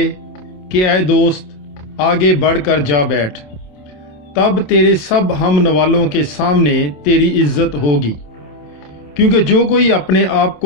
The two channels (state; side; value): late; right; 27 ms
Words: कि ऐ दोस्त आगे बढ़कर जा बैठ। तब तेरे सब हम नवालों के सामने तेरी इज्जत होगी, क्योंकि जो कोई अपने आप